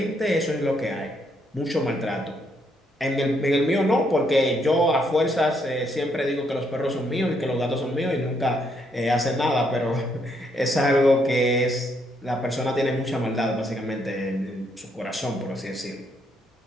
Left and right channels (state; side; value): normal; both; correlation 0.74